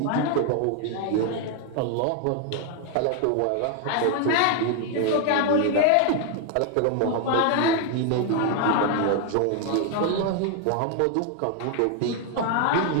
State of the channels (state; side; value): different; both; correlation 0.00